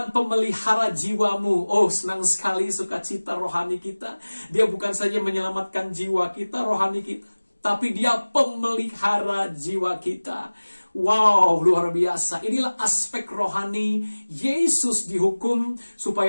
pemelihara jiwamu. Oh, senang sekali sukacita rohani kita. Dia bukan saja menyelamatkan jiwa kita, rohani kita, tapi dia pemelihara jiwa kita. Wow, luar biasa. Inilah aspek rohani. Yesus dihukum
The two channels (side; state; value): both; inverted; correlation -1.00